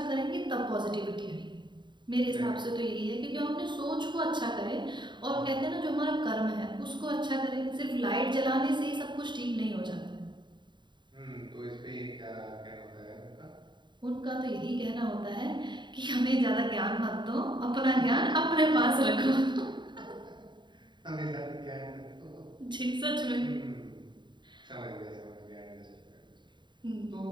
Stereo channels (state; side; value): late; left; 0.22 ms